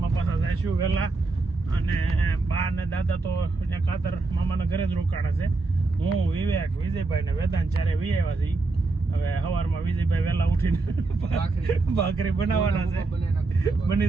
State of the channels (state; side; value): quieter; left; 3.5 dB